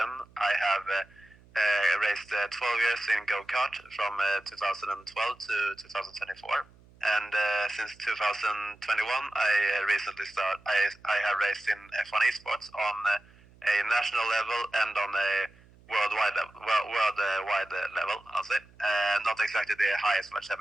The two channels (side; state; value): right; noise; hum, 27 dB below the sound